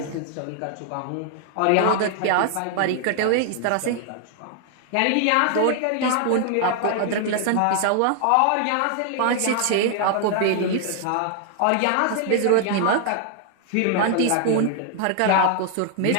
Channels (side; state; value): both; different; correlation 0.00